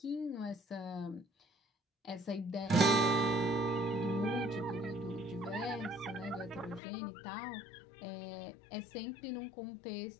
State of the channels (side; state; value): right; drops out; at 6.8 s